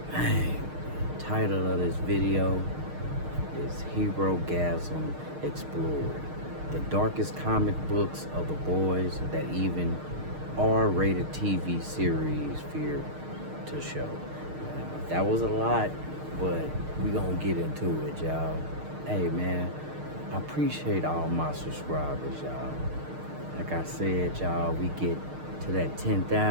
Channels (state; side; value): late; left; 6.5 ms